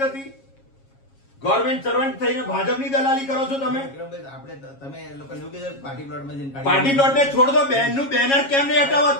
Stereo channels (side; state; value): right; late; 7.3 ms